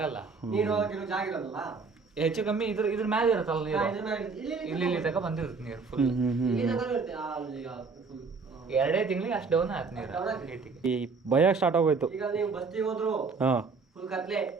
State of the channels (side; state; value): left; quieter; 4.6 dB